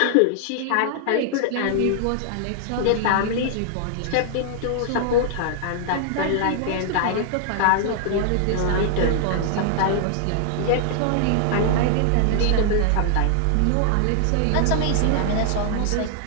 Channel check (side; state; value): both; different; correlation -0.01